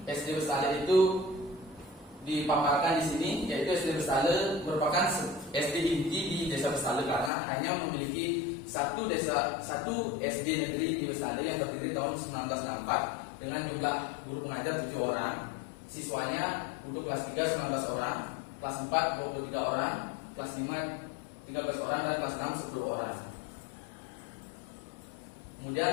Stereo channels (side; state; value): right; drops out; at 7.3 s